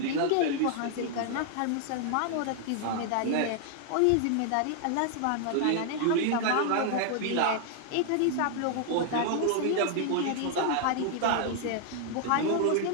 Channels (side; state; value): both; different; correlation 0.00